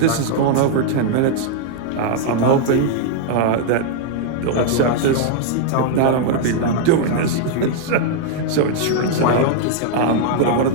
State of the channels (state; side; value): different; both; correlation -0.01